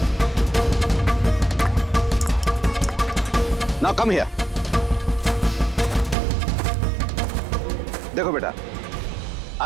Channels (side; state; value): left; drops out; at 6.2 s